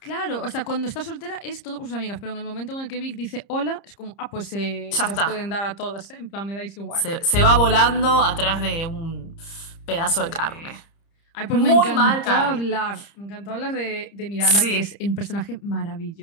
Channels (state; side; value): late; right; 30 ms